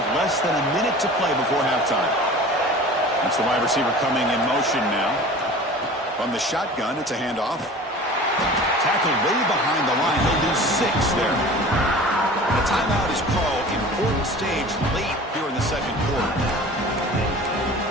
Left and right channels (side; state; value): both; normal; correlation 0.40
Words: less than a minute to play before halftime. That's the wide receiver coming in motion now. From the shotgun, it's a handoff. Tackled way behind the line. He'll lose 6 there. The timeout is called. Important stage late here in the second quarter.